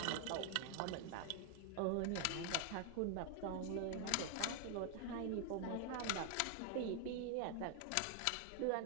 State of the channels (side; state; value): both; different; correlation 0.00